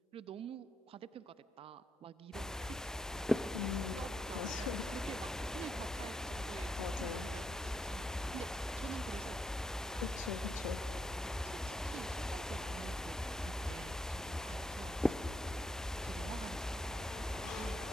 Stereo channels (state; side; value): normal; both; correlation 0.80